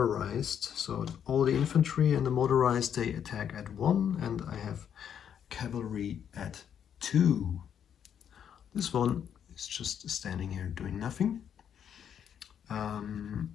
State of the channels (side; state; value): right; quieter; 8.7 dB